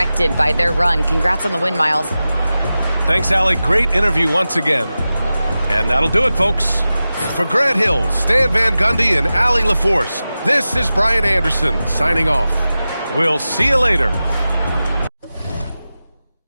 by their run. Congrats on the win, Miles. Thanks, Allie. Great interview once again. And that'll do it, folks. For Grant Hill, Stan Van Gundy, and Allie LaForce, this is Brian Anderson signing off. We'll see you later.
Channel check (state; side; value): inverted; both; correlation -0.94